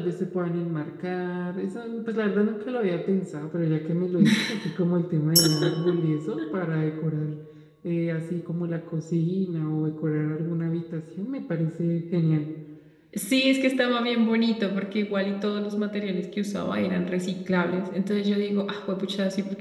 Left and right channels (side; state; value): both; identical; correlation 1.00